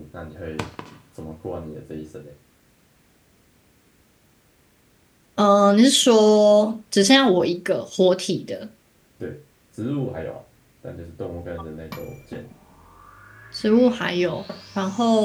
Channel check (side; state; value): both; identical; correlation 1.00